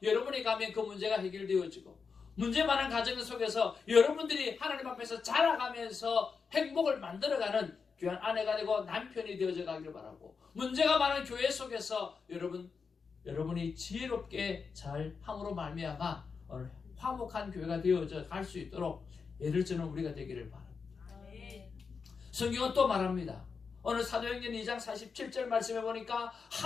여러분이 가면 그 문제가 해결되어지고, 문제 많은 가정 속에서 여러분들이 하나님 앞에서 자라가면서 행복을 만들어가는 귀한 아내가 되고 남편이 되어져 가기를 바라고, 문제가 많은 교회 속에서 여러분이 지혜롭게 잘 함으로 말미암아 오늘 화목한 교회가 되어져 갈 수 있도록 예를 드는 우리가 되기를 바랍니다. 아멘. 성경은 또 말합니다. 오늘 사도행전 2장 47절 말씀해 보니까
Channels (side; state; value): right; quieter; 5.4 dB